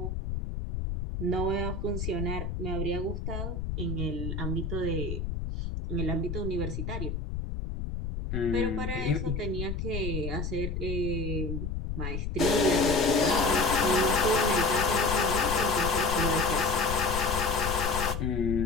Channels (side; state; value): left; noise; rumble, 4 dB below the sound